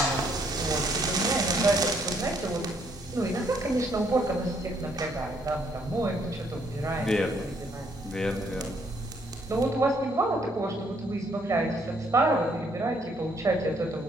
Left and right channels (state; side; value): normal; both; correlation 0.68